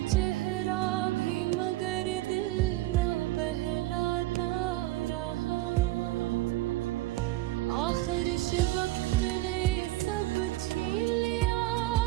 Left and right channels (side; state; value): left; quieter; 17.6 dB